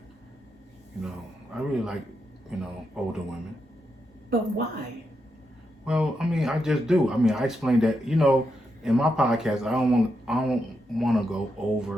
I really like, older women. But why? Well, I mean, I just do. I mean, I explained that, in my podcast, I don't want to go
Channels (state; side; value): normal; both; correlation 0.84